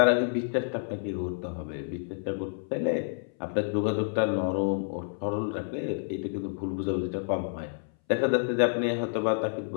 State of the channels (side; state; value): right; silent; 59 dB below the other